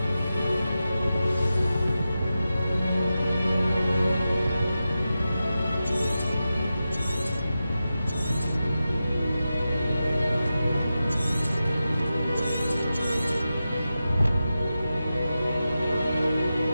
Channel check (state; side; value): inverted; both; correlation -0.92